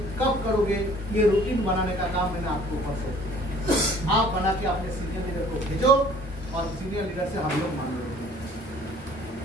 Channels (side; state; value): both; normal; correlation 0.53